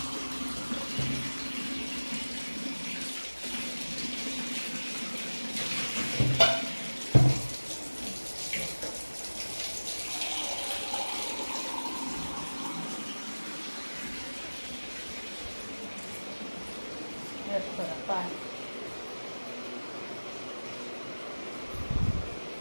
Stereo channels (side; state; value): both; inverted; correlation -1.00